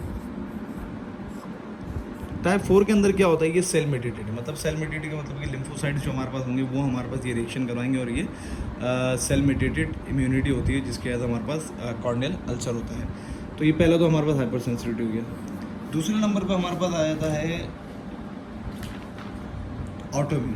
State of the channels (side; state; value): both; identical; correlation 1.00